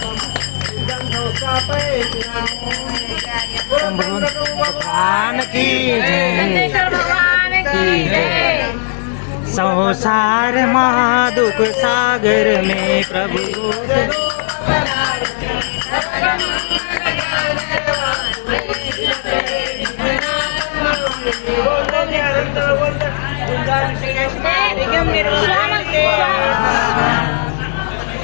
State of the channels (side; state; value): right; silent; digital silence